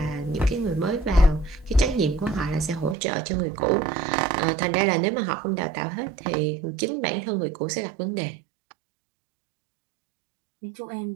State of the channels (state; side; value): drops out; left; at 3.0 s